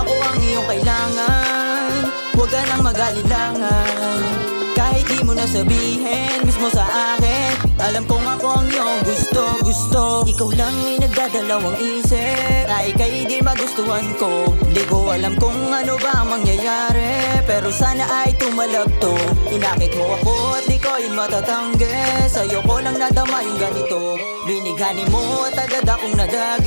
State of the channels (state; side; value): inverted; both; correlation -1.00